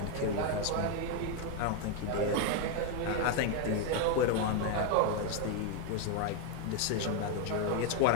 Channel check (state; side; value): different; both; correlation 0.01